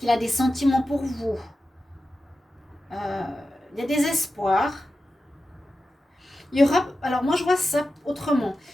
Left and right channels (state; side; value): normal; both; correlation 0.92